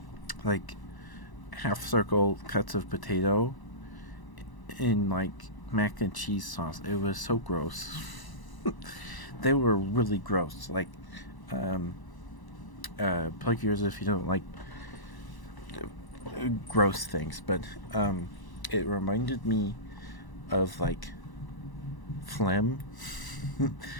like half circle cuts of potato in like mac and cheese sauce. It was so gross. They were really gross. Like, um, plug yours if you don't like gross things, but it reminded me of like phlegm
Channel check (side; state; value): right; late; 1.0 ms